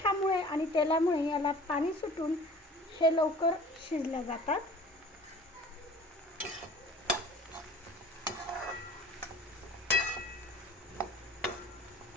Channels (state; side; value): normal; both; correlation 0.45